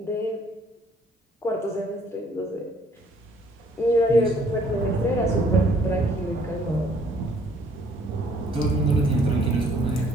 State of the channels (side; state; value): both; normal; correlation 0.61